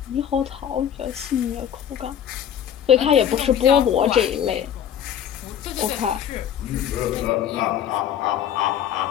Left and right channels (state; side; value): quieter; right; 9.5 dB